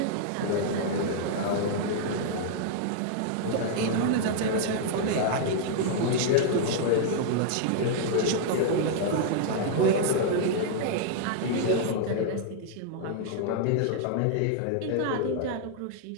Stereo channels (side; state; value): both; different; correlation -0.01